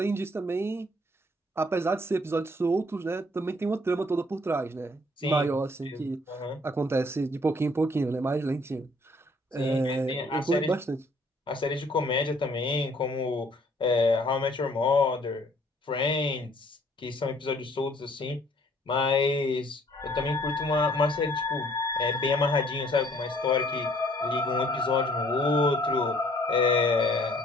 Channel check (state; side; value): normal; both; correlation 0.60